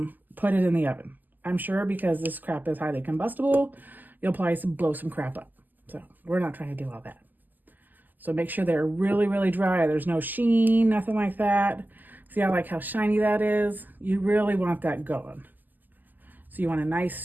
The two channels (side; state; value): left; late; 0.086 ms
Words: put it in the oven. I'm sure because this crap is highly combustible, you'll probably blow some crap up. So we're not trying to do all that. So make sure they're really, really dry. There's no sheen, nothing like that. See, I like how shiny that is. You really want that going. So you want a nice,